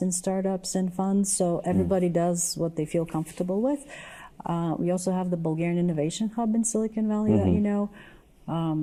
in startups and funds. So everybody does what they feel comfortable with. We also have the Bulgarian Innovation Hub in Silicon Valley that you know.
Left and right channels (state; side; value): identical; both; correlation 1.00